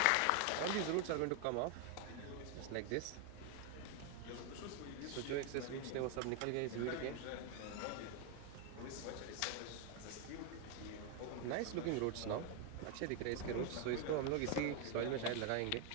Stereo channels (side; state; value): both; different; correlation 0.01